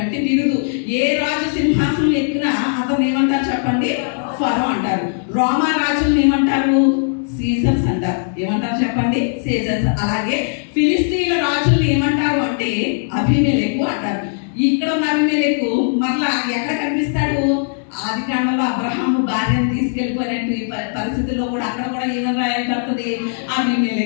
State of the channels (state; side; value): silent; right; digital silence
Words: బిరుదు. ఏ రాజు సింహాసనం ఎక్కినా అతను ఏమంటారు చెప్పండి? ఫరో అంటారు. రోమా రాజులను ఏమంటారు? సీజర్స్ అంటారు. ఏమంటారు చెప్పండి? సీజర్స్. అలాగే ఫిలిస్తీన్ల రాజులను ఏమంటారు అంటే అబీమెలెకు అంటారు. ఇక్కడ ఉన్న అబీమెలెకు మరలా ఎక్కడ కనిపిస్తాడు? ఆదికాండంలో అబ్రహాము భార్యను తీసుకెళ్ళిపోయినట్టు ఈ పరిస్థితుల్లో కూడా అక్కడ కూడా ఏమని రాయబడుతుంది?